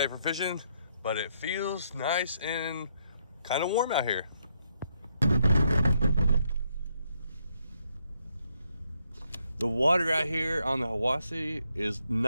for fishing, but it feels nice and kind of warm out here. The water out here on the Hiwassee is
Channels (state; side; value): inverted; both; correlation -0.76